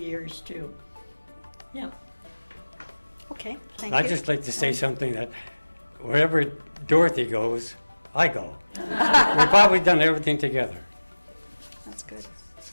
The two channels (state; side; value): inverted; both; correlation -1.00